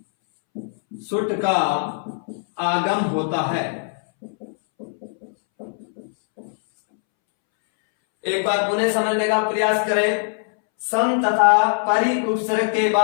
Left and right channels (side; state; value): right; silent; 65 dB below the other